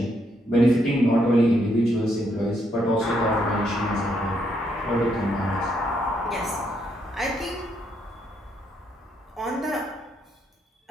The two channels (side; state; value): both; normal; correlation 0.75